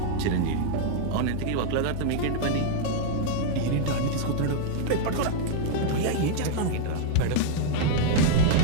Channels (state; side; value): different; both; correlation -0.01